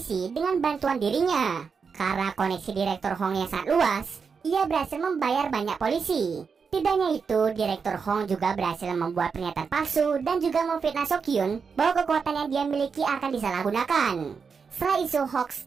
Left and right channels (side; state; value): left; quieter; 5.7 dB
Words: dengan bantuan dirinya. Karena koneksi Direktur Hong yang sangat luas, ia berhasil membayar banyak polisi. Tidak hanya itu, Direktur Hong juga berhasil membuat pernyataan palsu dan juga memfitnah Sokyun bahwa kekuatan yang dia miliki akan disalahgunakan. Setelah isu